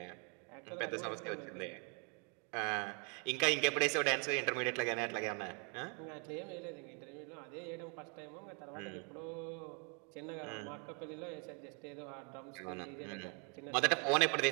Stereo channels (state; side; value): quieter; left; 36.7 dB